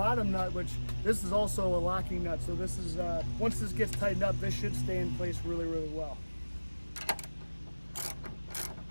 nut, which this is also a locking nut. So this is, once this gets tightened up, this should stay in place really, really well.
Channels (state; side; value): inverted; both; correlation -1.00